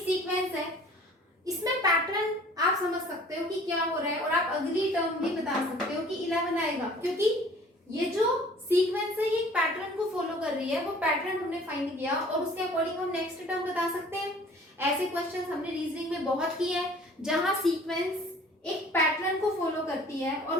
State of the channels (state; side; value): normal; both; correlation 0.51